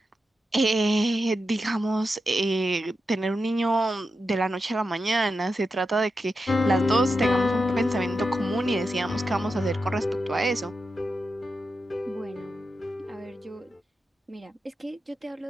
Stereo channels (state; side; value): normal; both; correlation 0.89